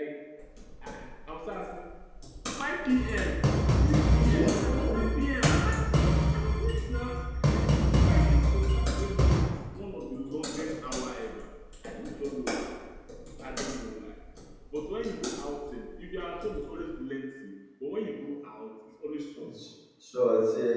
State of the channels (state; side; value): identical; both; correlation 1.00